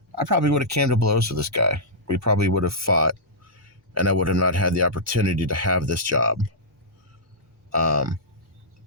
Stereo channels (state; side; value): normal; both; correlation -0.12